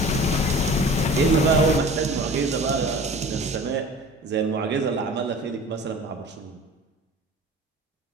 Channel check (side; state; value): both; normal; correlation 0.41